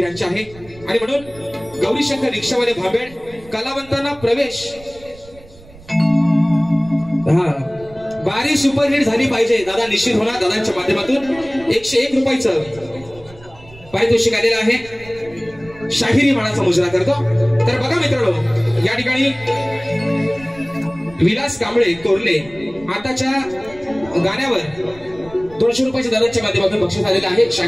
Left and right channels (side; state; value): right; noise; rumble, 22 dB below the sound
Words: आहे. आणि म्हणून गौरीशंकर रिक्षावाले भांबेड कलावंतांना प्रवेश बारी सुपरहिट झाली पाहिजे. दादा निश्चित होणार दादांच्या माध्यमातून 101 रुपयाचं पारितोषिक आलेलं आहे, शाहिरी मानाचा मुजरा करतो. तर बघा मित्रांनो, या ठिकाणी विलास कांबळे कोरले आताच्या गाण्यावर 200 रुपयाच्या दराच्या माध्यमातून बक्षीस आलेलं आहे,